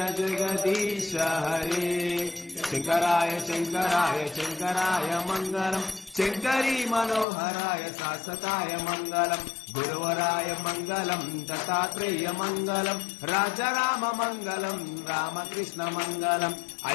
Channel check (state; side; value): drops out; right; at 7.2 s